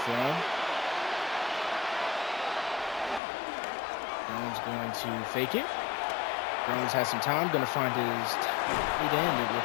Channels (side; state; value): right; drops out; at 3.2 s